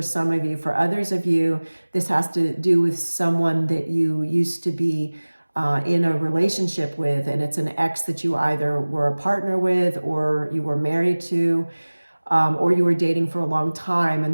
some of you. For others of you, this has to do with someone that you used to be in a relationship with, and it's an ex that you either were a partner with or you were married to. Or you were dating for a long time.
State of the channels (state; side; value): inverted; both; correlation -1.00